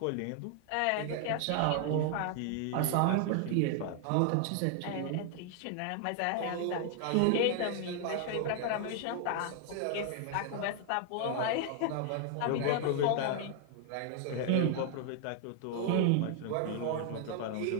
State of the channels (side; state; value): both; different; correlation 0.00